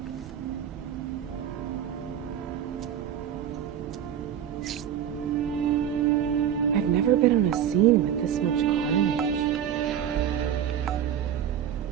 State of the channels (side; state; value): left; quieter; 9.6 dB